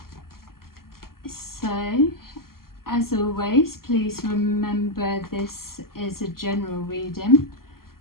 So, as always, please remember this is a general reading.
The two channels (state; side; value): late; right; 0.92 ms